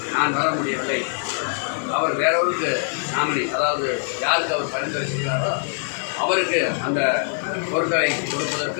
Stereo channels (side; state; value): right; silent; digital silence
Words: நான் வர முடியவில்லை, அவர் வேறொருக்கு நாமினி, அதாவது யாருக்கு அவர் பரிந்துரை செய்கிறாரோ அவருக்கு அந்த பொருட்களை